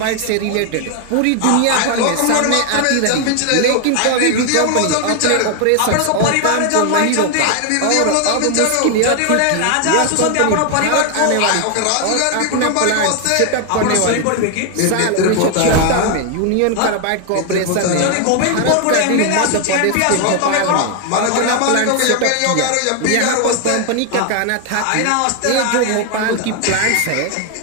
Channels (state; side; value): different; both; correlation 0.01